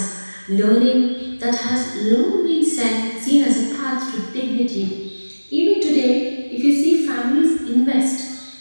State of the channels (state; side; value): inverted; both; correlation -1.00